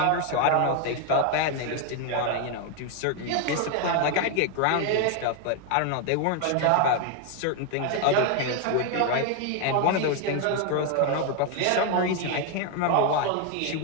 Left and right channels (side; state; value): both; different; correlation 0.01